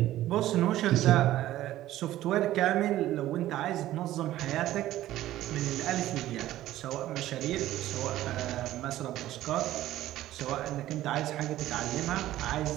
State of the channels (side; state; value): left; quieter; 14.4 dB